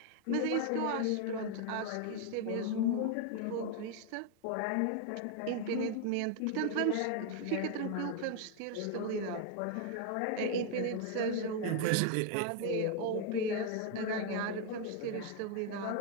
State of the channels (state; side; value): different; both; correlation 0.00